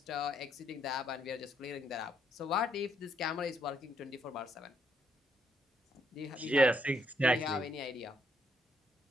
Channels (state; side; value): normal; both; correlation 0.73